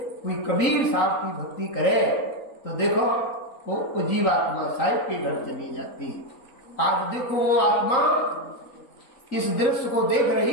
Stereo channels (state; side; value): late; right; 3.8 ms